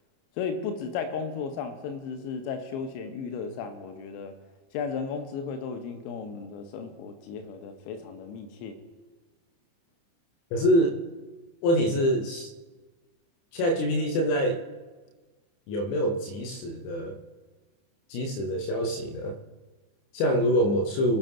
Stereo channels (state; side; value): late; right; 30 ms